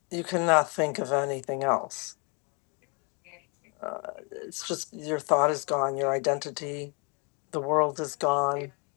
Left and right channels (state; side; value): quieter; right; 33.5 dB